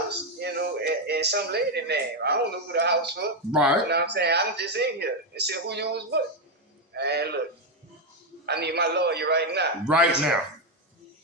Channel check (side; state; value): both; normal; correlation 0.05